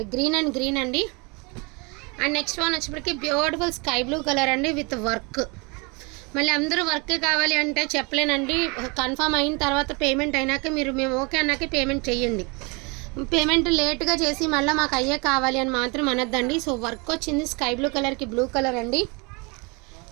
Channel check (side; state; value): left; quieter; 29.7 dB